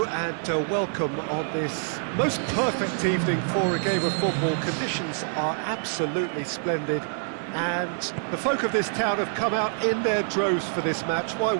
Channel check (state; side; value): silent; left; digital silence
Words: and welcome on this most perfect evening for a game of football. Conditions are absolutely splendid and the folk of this town have come out in their droves for this match. Why